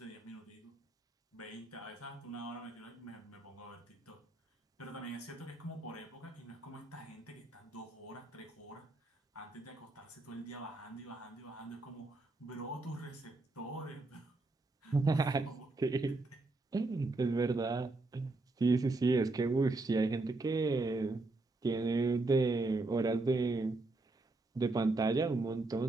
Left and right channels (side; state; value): left; quieter; 3.2 dB